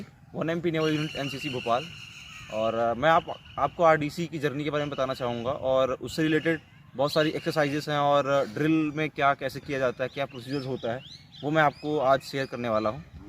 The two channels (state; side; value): identical; both; correlation 1.00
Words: 1MP naval unit NCC Bhopal. और मैं आपको आरडीसी की जर्नी के बारे में बताना चाहूँगा और उससे रिलेटेड बहुत सारी एक्सरसाइजेस हैं और ड्रिल में क्या कैसे किया जाता है, क्या प्रोसीजर्स होता है, वो मैं आपको आज शेयर करने वाला हूँ।